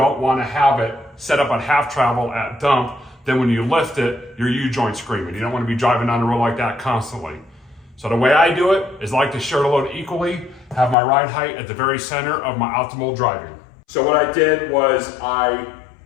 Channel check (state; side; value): drops out; right; at 11.0 s